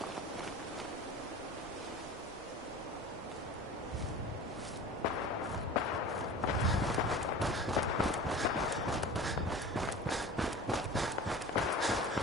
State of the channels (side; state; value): both; normal; correlation 0.37